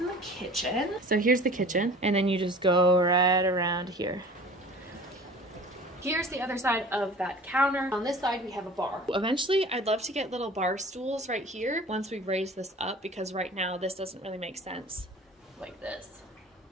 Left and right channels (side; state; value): both; normal; correlation 0.43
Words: the kitchen. So here's the kitchen, and then you just go right around here. Here's the other side of that counter. On this side, we have a bar. Eventually, I'd love to get little bar stools right here once we raise this up, because right now this doesn't really make sense like this.